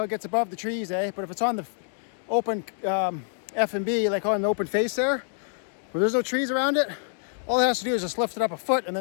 it gets above the trees, eh? But if it's on the open F&B, like on the open face there, where there's no trees around it, all it has to do is just lift it up a foot and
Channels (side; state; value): right; silent; 60 dB below the other